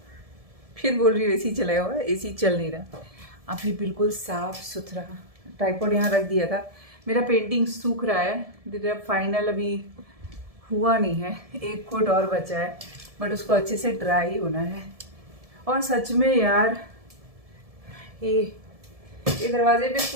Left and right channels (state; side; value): late; left; 1.7 ms